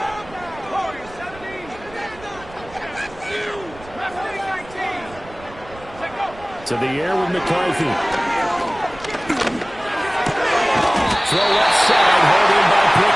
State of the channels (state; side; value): noise; right; rumble, 20 dB below the sound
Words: To the air with McCarthy. Throw left side, held in by